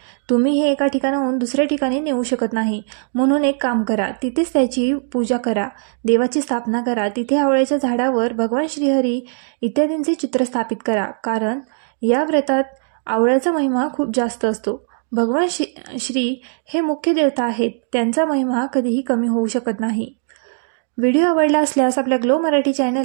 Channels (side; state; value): left; silent; 59 dB below the other